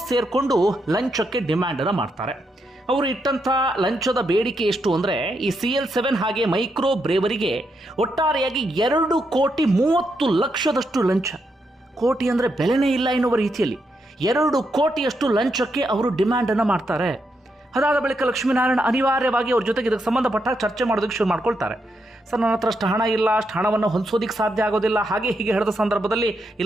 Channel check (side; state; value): both; normal; correlation 0.81